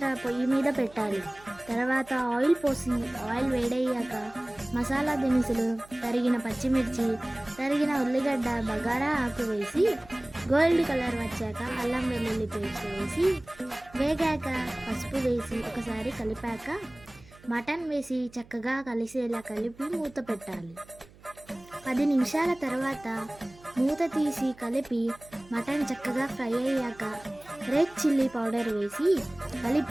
పొయ్యి మీద పెట్టాలి. తర్వాత ఆయిల్ పోసి ఆయిల్ వేడయ్యాక మసాలా దినుసులు, తరిగిన పచ్చిమిర్చి, తరిగిన ఉల్లిగడ్డ, బగారా ఆకు వేసి గోల్డ్ కలర్ వచ్చాక అల్లం వెల్లుల్లి పేస్ట్ వేసి వేగాక పసుపు వేసి ఒకసారి కలిపాక మటన్ వేసి చక్కగా కలిసేలా కలిపి మూత పెట్టాలి. 10 నిమిషాల తర్వాత మూత తీసి కలిపి మటన్ చక్కగా ఫ్రై అయ్యాక రెడ్ చిల్లీ పౌడర్ వేసి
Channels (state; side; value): noise; right; hum, 24 dB below the sound